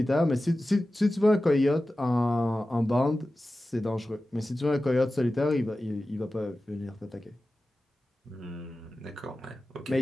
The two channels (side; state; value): both; normal; correlation 0.95